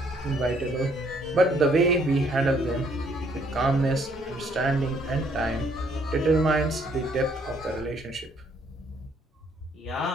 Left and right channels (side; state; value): both; normal; correlation 0.66